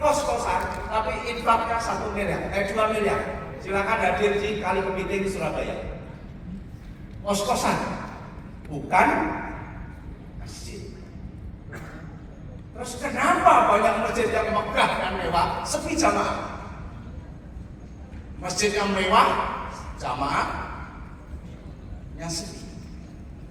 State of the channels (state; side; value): identical; both; correlation 1.00